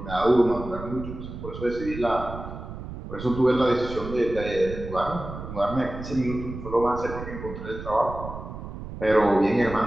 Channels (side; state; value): right; noise; rumble, 10 dB below the sound